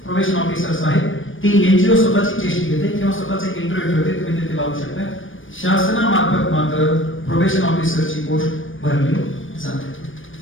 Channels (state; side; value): late; right; 0.57 ms